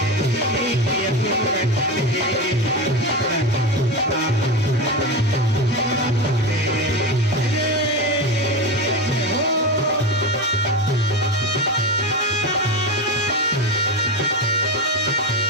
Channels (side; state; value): both; normal; correlation 0.20